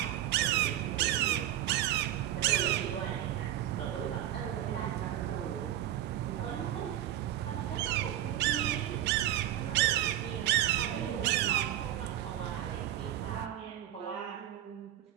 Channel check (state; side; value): quieter; left; 12.3 dB